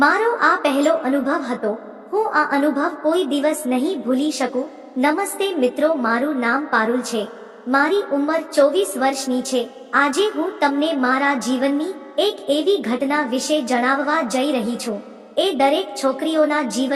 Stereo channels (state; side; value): identical; both; correlation 1.00